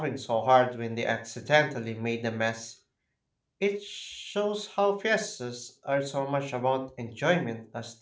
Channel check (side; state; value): both; identical; correlation 1.00